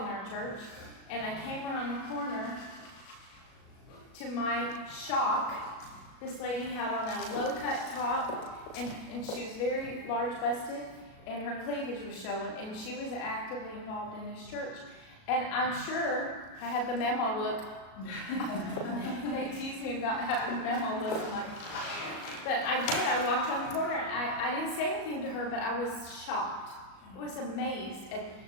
our church, and I came around the corner. To my shock, this lady had on a low-cut top, and she was very large-busted, and her cleavage was showing, and she was actively involved in this church. And I'm sure I had the memo look. They tease me about having the memo look, but I did. I walked on the corner. I didn't say anything to her, but I was shocked. I was amazed. And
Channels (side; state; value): right; late; 37 ms